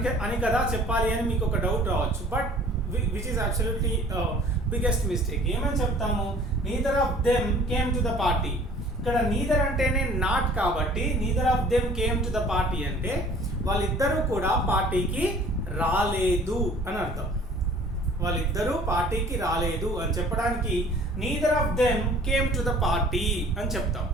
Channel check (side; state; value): both; normal; correlation 0.51